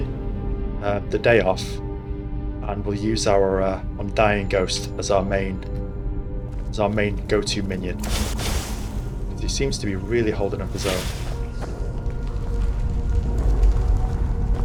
the day off, and we'll use our Undying Ghost as our main go-to minion. He seems to be really holding up his own.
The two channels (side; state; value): both; identical; correlation 1.00